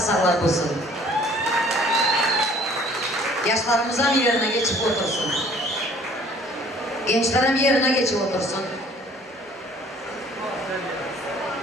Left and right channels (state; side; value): normal; both; correlation 0.54